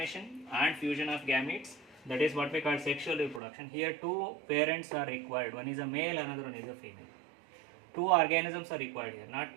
and fusion of gametes, that is what we call sexual reproduction. Here two parents are required. One is a male, another one is a female. two organisms are required here, not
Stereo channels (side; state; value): left; drops out; at 3.4 s